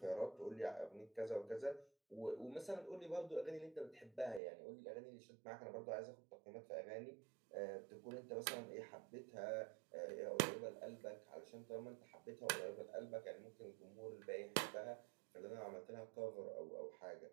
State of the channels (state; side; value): drops out; left; at 4.4 s